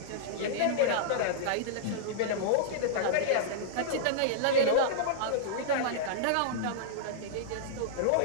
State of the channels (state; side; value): different; both; correlation -0.02